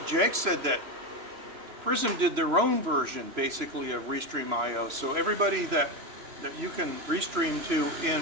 Jake said that Prism did their own version, basically, of Restream IO. So everybody that you can restream to in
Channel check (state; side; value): late; left; 2.9 ms